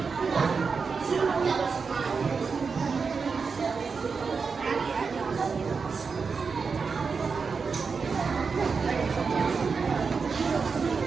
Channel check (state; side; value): quieter; left; 5.2 dB